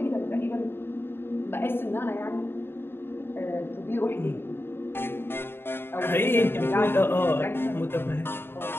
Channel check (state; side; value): late; right; 0.11 ms